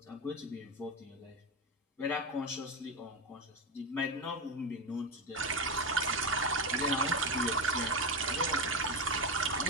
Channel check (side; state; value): both; normal; correlation 0.15